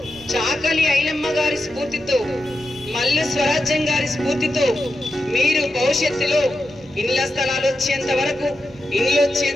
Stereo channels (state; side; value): normal; both; correlation 0.89